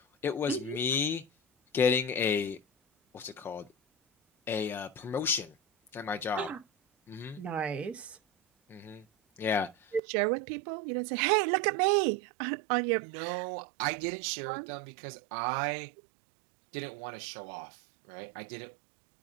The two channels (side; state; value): left; drops out; at 10.0 s